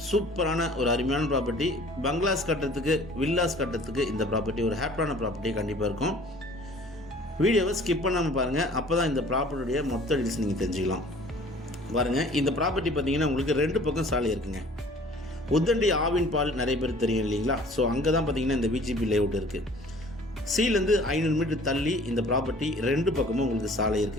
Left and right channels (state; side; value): normal; both; correlation 0.50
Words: சூப்பரான ஒரு அருமையான ப்ராப்பர்ட்டி. பங்களாஸ் கட்டுறதுக்கு வில்லாஸ் கட்டுறதுக்கு இந்த ப்ராப்பர்ட்டி ஒரு ஹாப்பியான ப்ராப்பர்ட்டி கண்டிப்பாக இருக்கும். வீடியோவை ஸ்கிப் பண்ணாமல் பாருங்கள், அப்போ தான் இந்த ப்ராப்பர்ட்டியுடைய மொத்த டீல்ஸ் நீங்கள் தெரிஞ்சுக்கலாம். பாருங்கள், இந்த ப்ராப்பர்ட்டி பார்த்தீங்கன்னா உங்களுக்கு 2 பக்கம் சாலை இருக்குங்க. உத்தண்டி ஆவின் பால் நிறைய பேர் தெரியும் இல்லைங்களா? ஸோ அங்கே தான் பார்த்தீங்கன்னா இந்த விஜிபி லேஅவுட் இருக்குது. சீலேருந்து 500 மீட்டர் தள்ளி இந்த ப்ராப்பர்ட்டி 2 பக்கமும் உங்களுக்கு சாலை